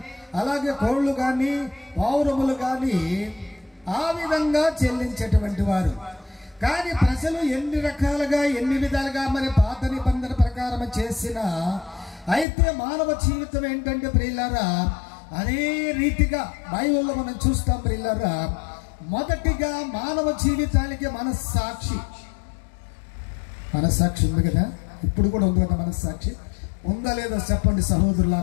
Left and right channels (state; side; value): drops out; right; at 12.5 s